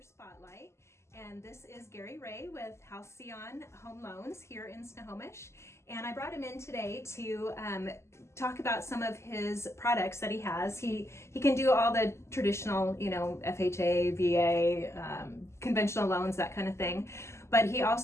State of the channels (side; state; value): right; late; 0.13 ms